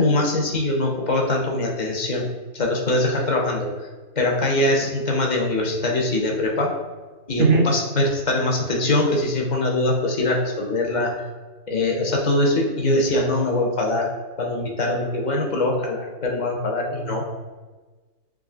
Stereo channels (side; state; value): left; late; 2.1 ms